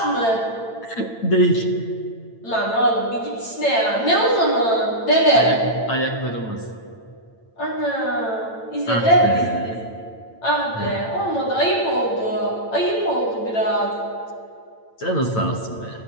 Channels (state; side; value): late; right; 8.9 ms